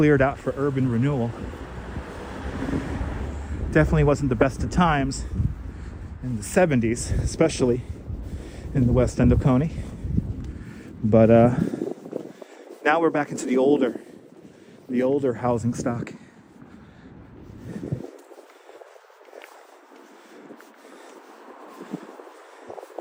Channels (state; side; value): identical; both; correlation 1.00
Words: out for urban renewal. Definitely wasn't the best of times in the 70s, especially in the west end of Coney. But now we're back into the older housing stock.